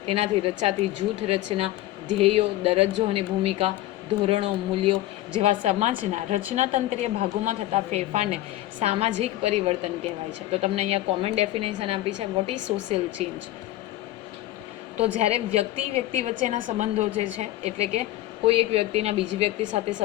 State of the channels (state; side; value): quieter; right; 15.3 dB